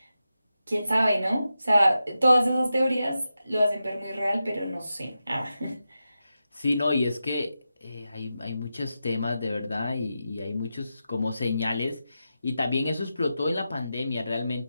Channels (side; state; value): both; inverted; correlation -0.90